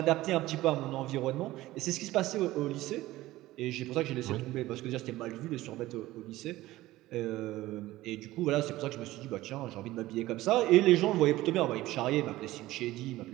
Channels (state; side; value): quieter; left; 16.9 dB